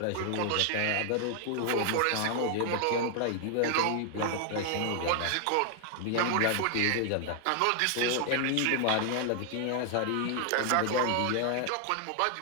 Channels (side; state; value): both; different; correlation 0.00